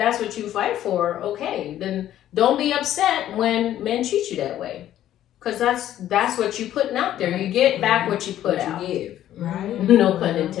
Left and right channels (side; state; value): right; quieter; 12.2 dB